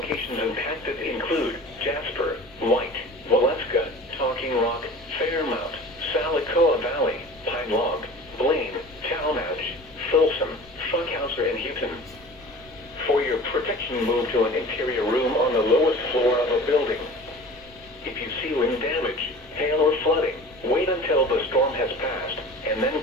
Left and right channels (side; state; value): left; noise; rumble, 25 dB below the sound